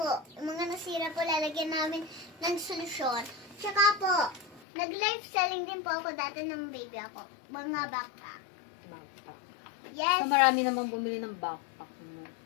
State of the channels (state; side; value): drops out; right; at 4.6 s